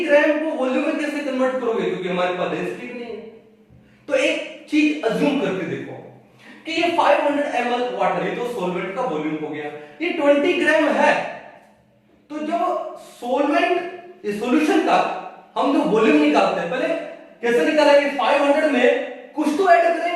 ग्राम को वॉल्यूम में कैसे कन्वर्ट करोगे, क्योंकि हमारे पास डेंसिटी नहीं है। तो एक चीज अज्यूम करके देखो कि ये 500 ml वाटर, ये तो सॉल्वेंट का वॉल्यूम हो गया, ये 20 ग्राम है। तो जब सॉल्वेंट इस सॉल्यूशन का हम जो वॉल्यूम निकालते हैं, पहले कैसे निकालेंगे? 500 में कुछ तो ऐड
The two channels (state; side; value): identical; both; correlation 1.00